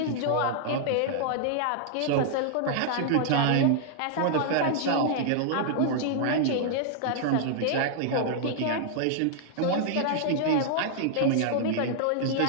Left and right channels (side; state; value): both; different; correlation -0.01